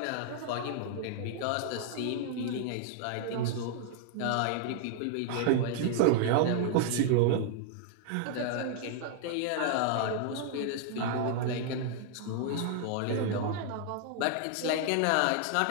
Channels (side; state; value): both; different; correlation -0.01